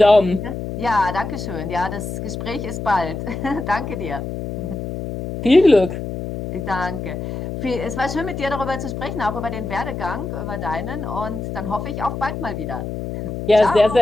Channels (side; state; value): left; noise; hum, 6 dB below the sound